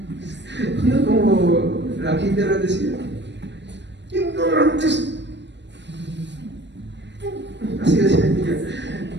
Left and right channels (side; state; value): left; late; 0.52 ms